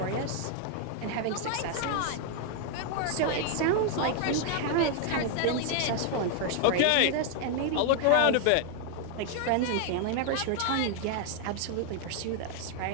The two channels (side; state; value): both; different; correlation 0.00